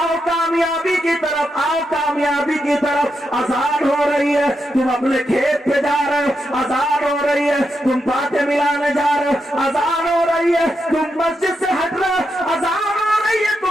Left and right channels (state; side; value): normal; both; correlation 0.84